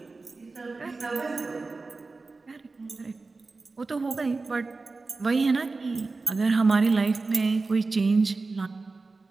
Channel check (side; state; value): left; quieter; 3.8 dB